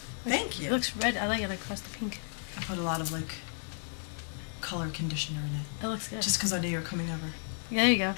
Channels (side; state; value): right; silent; 56 dB below the other